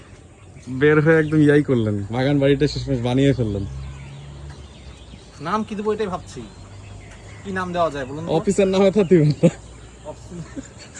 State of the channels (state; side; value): identical; both; correlation 1.00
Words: বের হয়ে একদম ইয়াই করলেন, বাগান বাড়িটা শেষমেশ বানিয়ে ফেললেন। নাম কি দেবো এটাই ভাবছি, কি নাম দেওয়া যায় বলুন তো? অফিসের নামে তো দিবেন না।